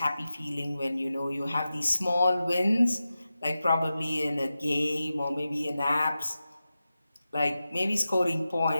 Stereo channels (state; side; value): inverted; both; correlation -0.93